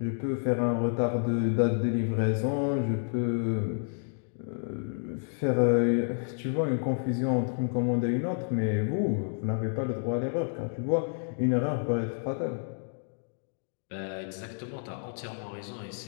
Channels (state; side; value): silent; right; digital silence